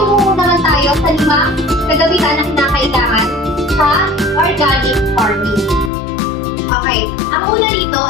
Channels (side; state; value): right; drops out; at 5.9 s